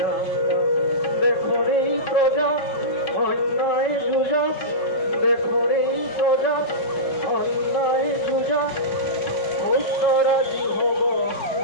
দেখরে প্রজা অন্যায় যুজা দেখরে প্রজা অন্যায় যুজা ঐতরাজি হব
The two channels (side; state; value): right; late; 5.4 ms